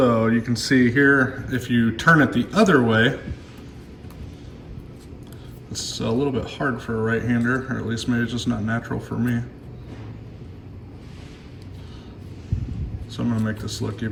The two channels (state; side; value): identical; both; correlation 1.00